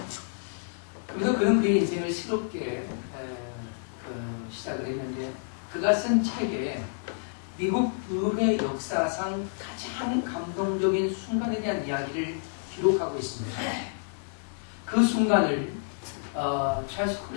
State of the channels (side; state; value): right; silent; digital silence